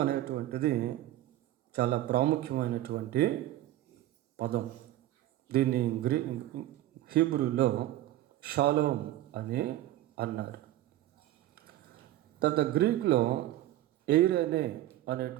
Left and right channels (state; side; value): quieter; left; 14.4 dB